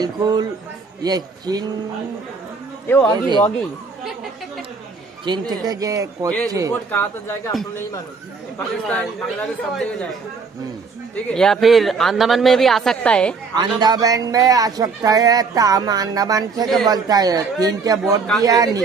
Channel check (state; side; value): quieter; left; 4.8 dB